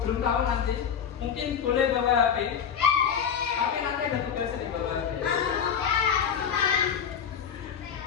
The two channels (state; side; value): quieter; right; 7.8 dB